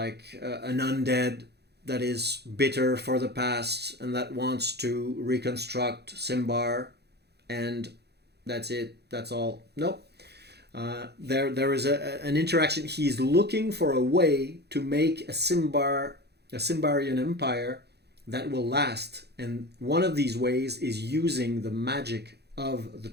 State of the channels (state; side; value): late; left; 0.48 ms